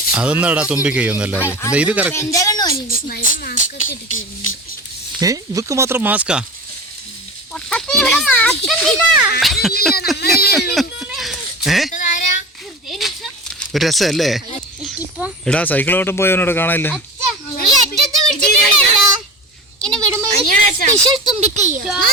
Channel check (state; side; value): normal; both; correlation 0.32